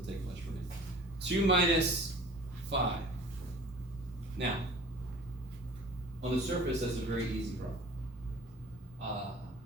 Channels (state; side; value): normal; both; correlation 0.44